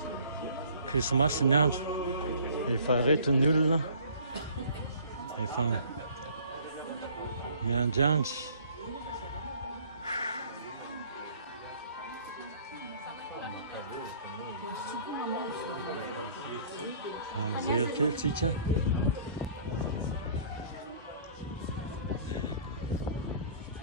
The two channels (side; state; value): both; inverted; correlation -0.52